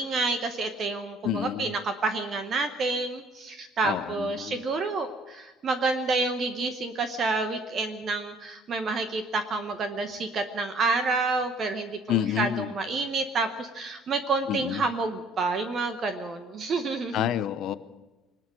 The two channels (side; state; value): both; normal; correlation 0.57